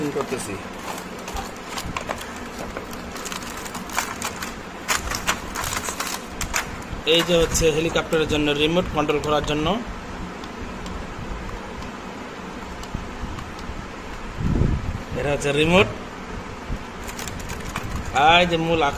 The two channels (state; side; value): identical; both; correlation 1.00